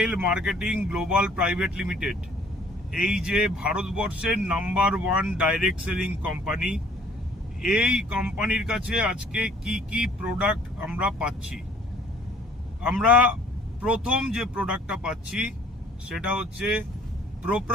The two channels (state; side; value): normal; both; correlation 0.57